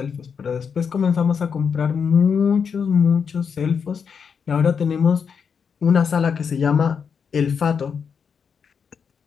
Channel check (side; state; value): right; quieter; 6.5 dB